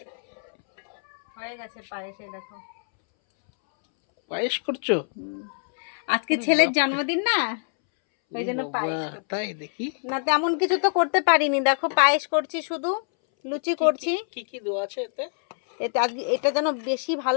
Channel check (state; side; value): silent; right; 62 dB below the other